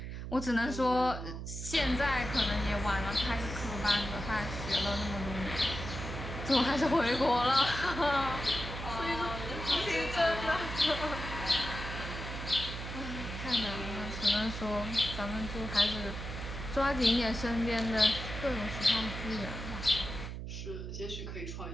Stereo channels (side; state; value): right; noise; hum, 7 dB below the sound